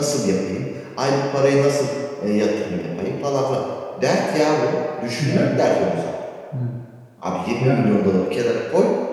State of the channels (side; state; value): both; identical; correlation 1.00